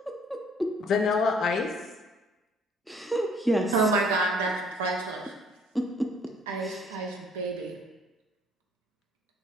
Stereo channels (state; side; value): normal; both; correlation 0.59